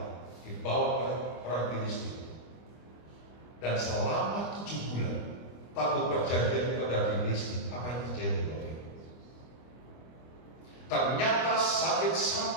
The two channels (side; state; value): right; late; 25 ms